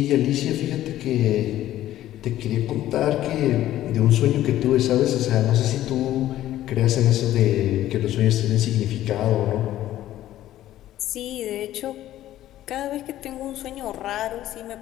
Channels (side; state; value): right; quieter; 13.5 dB